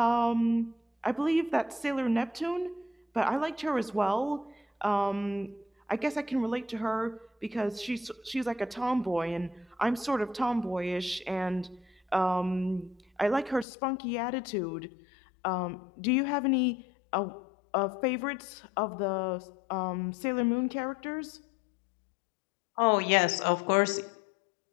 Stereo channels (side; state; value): right; drops out; at 13.7 s